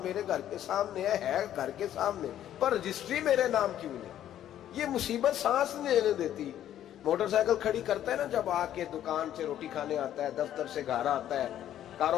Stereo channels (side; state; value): right; quieter; 11.4 dB